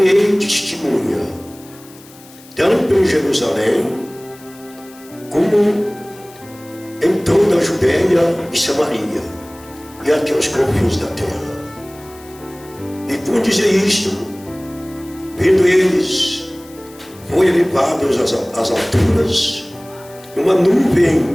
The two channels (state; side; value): noise; left; hiss, 23 dB below the sound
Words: testemunha, tanto em Jerusalém, como em toda a Judeia e Samaria, e até os confins da terra. E por dizer isto, vendo eles, foi elevados às alturas, uma